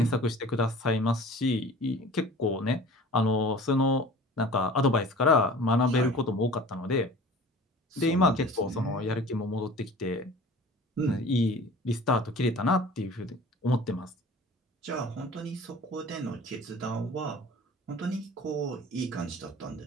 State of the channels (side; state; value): both; normal; correlation 0.43